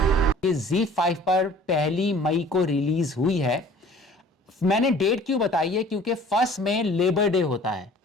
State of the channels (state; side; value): normal; both; correlation 0.50